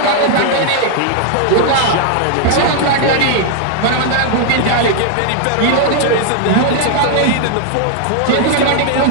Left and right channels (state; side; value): different; both; correlation 0.00